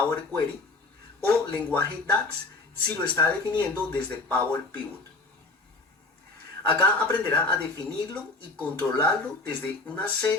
Query o lenguaje DAX si lo está definiendo desde Power Pivot. Acá aprenderá a definirlo y controlarlo desde una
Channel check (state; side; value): quieter; right; 3.3 dB